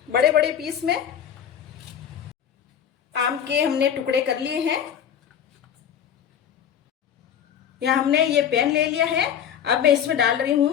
बड़े बड़े पीस में। आम के हमने टुकड़े कर लिए हैं। यहाँ हमने ये पैन ले लिया है। अब मैं इसमें डाल रही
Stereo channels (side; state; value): right; quieter; 8.9 dB